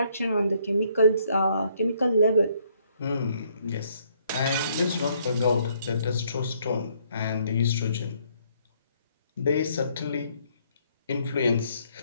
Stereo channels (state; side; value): inverted; both; correlation -0.68